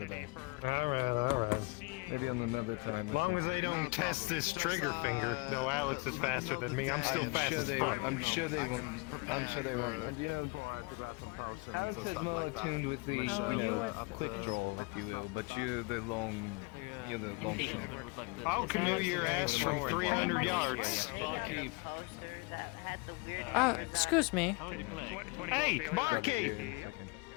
day. Alright. Maybe on another time. As long as they don't test this trigger finger, though Alex is faster than me, I'm still fast as fuck. I'm sure they won't. And you know, Alex is more attuned with the, quick draw, if you will, but you're the long shot. I'll canoe your ass from 300 yards. Excuse me. Hey, barkeep!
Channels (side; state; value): right; quieter; 28.8 dB